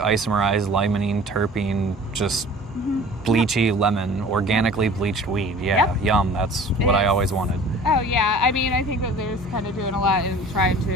limonene, terpene, just bleachy lemon, organically bleached weed. Yeah, yum. That's what I always wanted. Oh yeah, I mean, I think that there's kind of doing a lot in trying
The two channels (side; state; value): both; normal; correlation 0.45